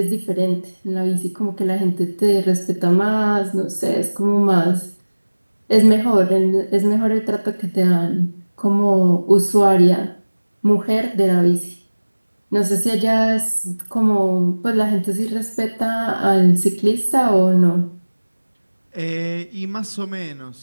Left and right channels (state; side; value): inverted; both; correlation -1.00